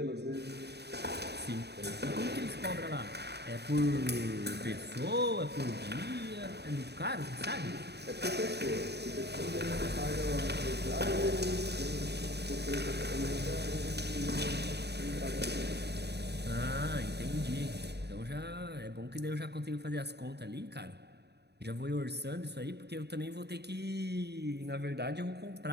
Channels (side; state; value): left; late; 0.48 ms